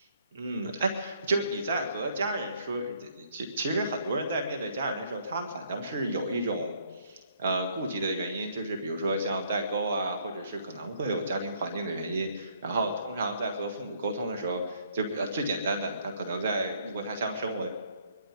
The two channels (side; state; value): both; inverted; correlation -0.65